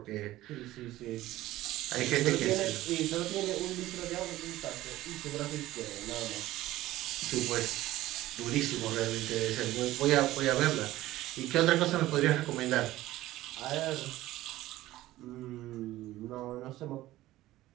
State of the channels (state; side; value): quieter; left; 16.0 dB